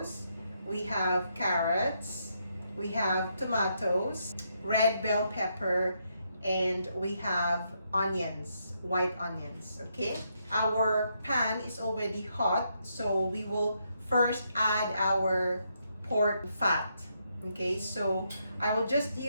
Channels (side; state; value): both; inverted; correlation -0.78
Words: we have carrots, we have tomatoes, red bell pepper, and we have onions, white onions. Okay, our pan is already hot, so we will first add our pork fat. Okay, so I will just